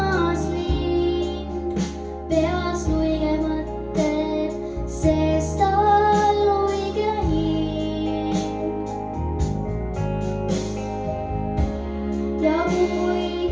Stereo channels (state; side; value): identical; both; correlation 1.00